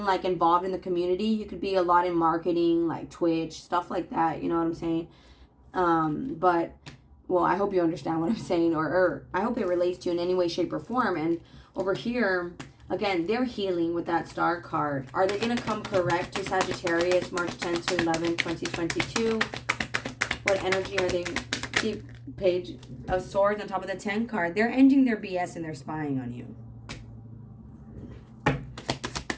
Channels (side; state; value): both; identical; correlation 1.00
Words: like involved in the community. You could be a lot in marketing, like Twitch, stuff like that, you know what I'm saying? But well, I hope you understand what I'm saying, or I hope it relates to you in any way, shape, or form. And over here, again, they're healing with that star card. Are they going to come correct to Sagittarius, March 10th to 11th, 2022? What energy are they? See, Page of Swords on top of the 10 card. They're ending their BS and they're spying on you.